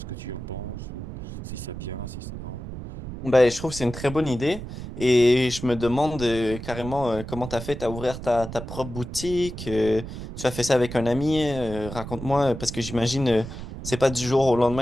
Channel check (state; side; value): noise; right; rumble, 9 dB below the sound